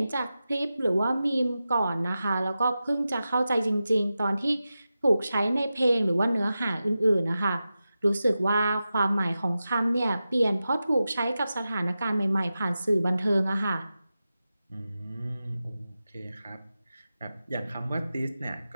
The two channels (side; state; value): both; inverted; correlation -0.92